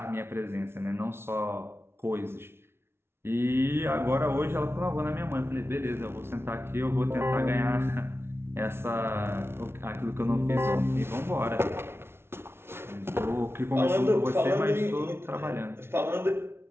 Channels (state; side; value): late; left; 0.12 ms